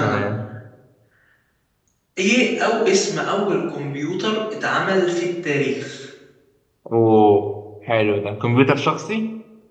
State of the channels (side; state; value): both; identical; correlation 1.00